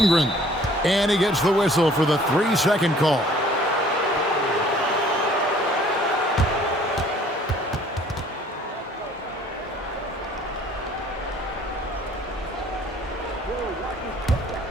And he gets the whistle for the 3-second call.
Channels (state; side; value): normal; both; correlation 0.55